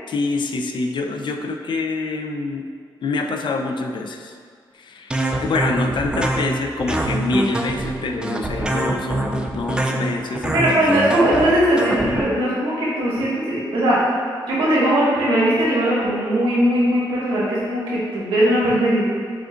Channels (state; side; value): normal; both; correlation 0.70